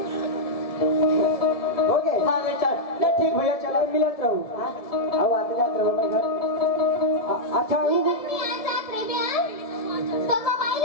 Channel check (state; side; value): late; right; 1.7 ms